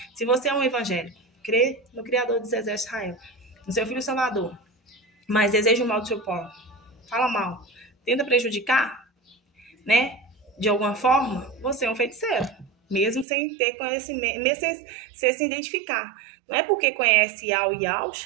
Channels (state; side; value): drops out; left; at 13.2 s